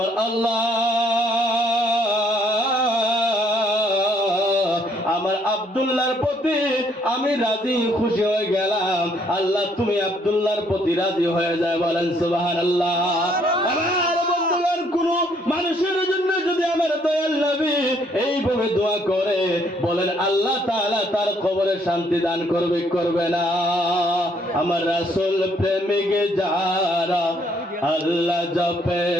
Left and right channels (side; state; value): both; normal; correlation 0.67